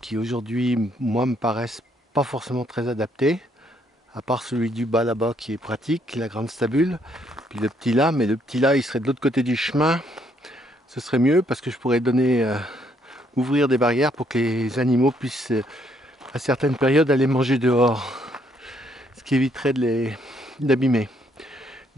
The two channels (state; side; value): normal; both; correlation 0.70